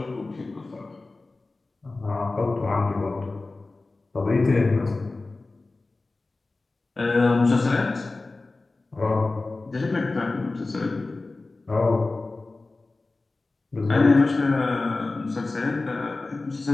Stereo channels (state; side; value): quieter; right; 3.4 dB